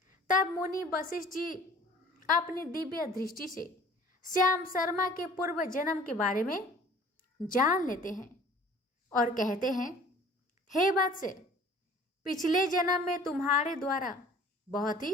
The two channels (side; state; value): both; normal; correlation 0.50